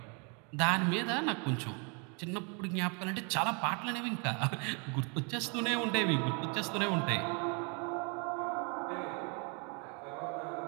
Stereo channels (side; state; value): left; quieter; 35.3 dB